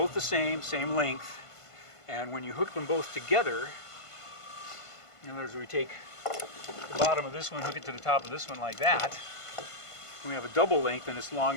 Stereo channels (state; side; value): late; right; 1.5 ms